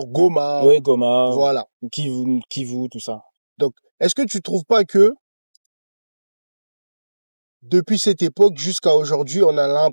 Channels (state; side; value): inverted; both; correlation -1.00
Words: Goma. Oui, Goma. Voilà. Kivu, tout ça. Donc, est-ce que tu trouves pas que depuis cette époque jusqu'à aujourd'hui, on a